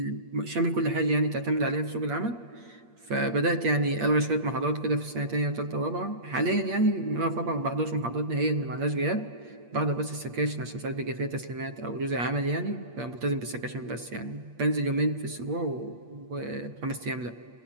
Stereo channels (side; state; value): left; late; 8.5 ms